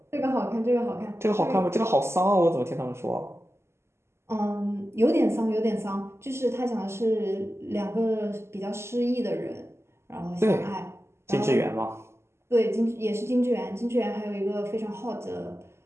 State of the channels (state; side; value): late; left; 0.13 ms